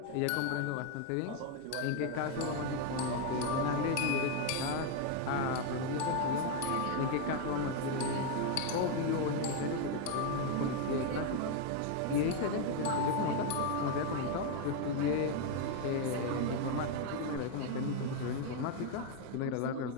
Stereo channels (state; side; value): different; both; correlation 0.01